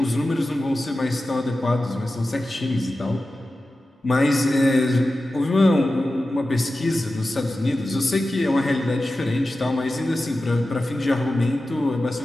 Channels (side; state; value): both; normal; correlation 0.94